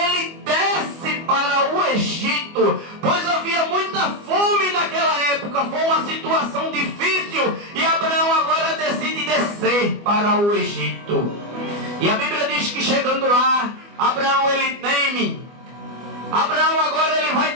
desce para o Egito, pois havia muita fome naquela época, foi uma situação difícil, e Abraão agora decide descer para o Egito. E a Bíblia diz que chegando lá, Abraão ele teme. Abraão agora ele vai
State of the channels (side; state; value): left; late; 24 ms